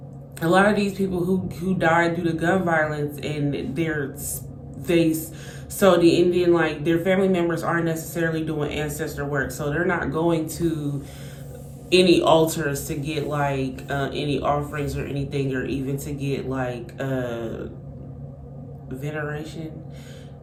a lot of these people who died due to gun violence and so the Indian, like their family members aren't necessarily doing ancestor work, so they're not going to any altars to get like any offerings or anything, or even to get like veneration,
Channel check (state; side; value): identical; both; correlation 1.00